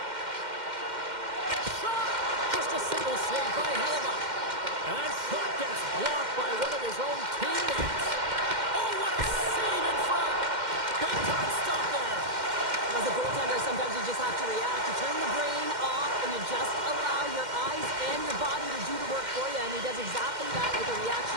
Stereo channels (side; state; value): left; late; 2.1 ms